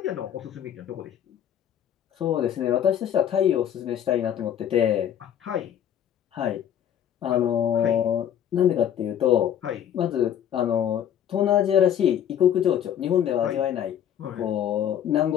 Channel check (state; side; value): quieter; right; 9.7 dB